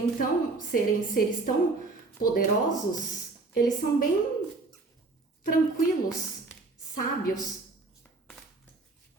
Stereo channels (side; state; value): left; quieter; 3.6 dB